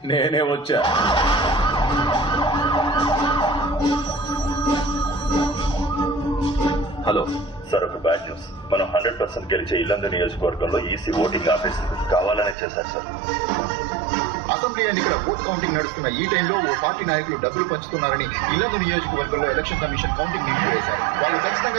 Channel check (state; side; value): drops out; left; at 12.6 s